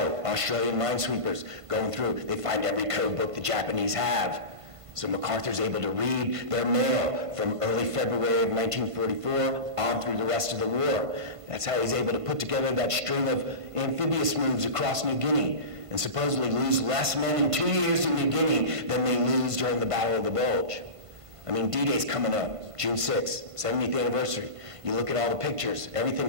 Australian minesweepers, going through, they find every code book the Japanese have. So MacArthur's able to read their mail from early February of 1944 on through the rest of the war. That's how he's able to put together that string of amphibious moves across New Guinea and supposedly lose less men in 2 years in New Guinea than they lose during the Battle of the Bulge. I mean, D-Day's coming up, June 6th, 70th anniversary. You look at all the pictures,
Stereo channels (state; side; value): late; left; 1.5 ms